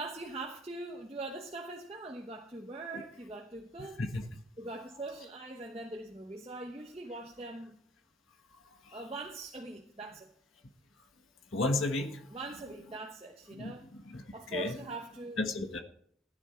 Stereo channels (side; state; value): both; normal; correlation 0.53